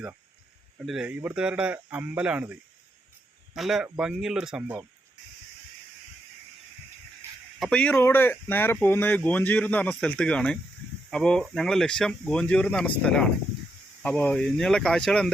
കണ്ടില്ലേ, ഇവിടുത്തുകാരുടെ അമ്പലമാണിത്. നല്ല ഭംഗിയുള്ളൊരു സംഭവം. അപ്പോൾ ഈ റോഡ് നേരെ പോകുന്നത് ഗോഞ്ചിയൂർ എന്ന് പറഞ്ഞ സ്ഥലത്തേക്കാണ്. അപ്പോൾ ഞങ്ങളുടെ ലക്ഷ്യം ഗോഞ്ചിയൂർ എന്ന് പറഞ്ഞ സ്ഥലമാണ്. അപ്പോൾ ഇനിയുള്ള കാഴ്ചകൾ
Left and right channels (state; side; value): normal; both; correlation 0.80